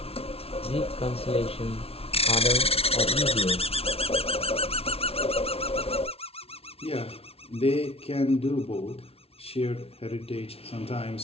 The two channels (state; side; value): late; right; 0.29 ms